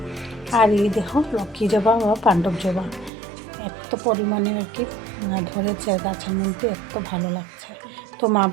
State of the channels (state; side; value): drops out; left; at 3.1 s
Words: আর এই দেখো লক্ষ্মী জবা বা পাণ্ডব জবা এত পরিমাণে আর কি ধরেছে গাছের মধ্যে, এত ভালো লাগছে। তো মা